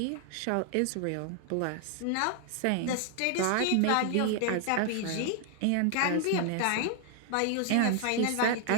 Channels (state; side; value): different; both; correlation 0.00